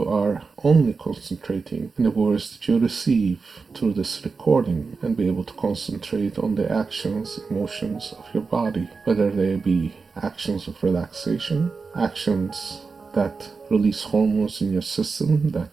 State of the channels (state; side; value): quieter; left; 4.6 dB